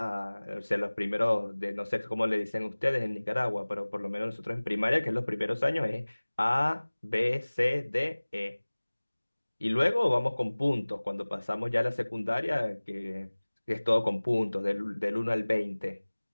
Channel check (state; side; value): inverted; both; correlation -1.00